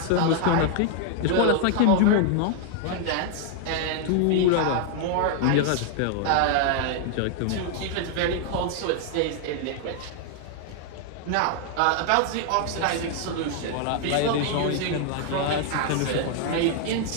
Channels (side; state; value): both; different; correlation 0.00